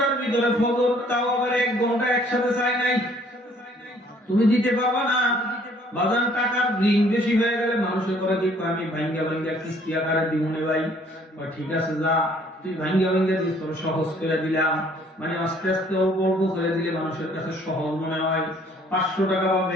ভিতরে ফজর, তাও আবার 1 ঘন্টা একসাথে চাই নাই। তুমি দিতে পারবা না। বাজার টাকার ঋণ বেশি হয়ে গেলে মানুষের করে কি আমি ভাঙ্গা ভাঙ্গা কিস্তি আকারে দিমুনে ভাই। ঠিক আছে যা তুই ভাঙ্গা ভাঙ্গা দিস, তোর সহজ করে দিলাম, মানে আস্তে আস্তে অল্প অল্প করে দিলে মানুষের কাছে সহজ মনে হয়। 500 টাকা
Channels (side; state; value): both; normal; correlation 0.60